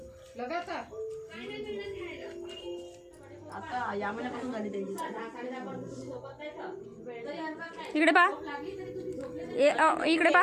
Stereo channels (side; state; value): both; identical; correlation 1.00